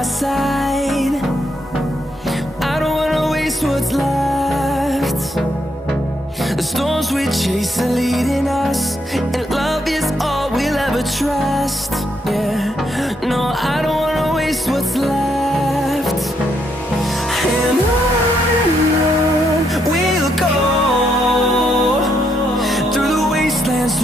side. I don't wanna waste what's left. The storms we chase are leading us, and love is all we'll ever trust. Yeah, no, I don't wanna waste what's left. And on we'll go, through the wastelands,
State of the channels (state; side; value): normal; both; correlation 0.76